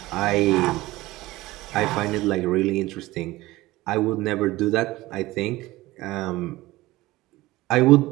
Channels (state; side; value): quieter; left; 18.5 dB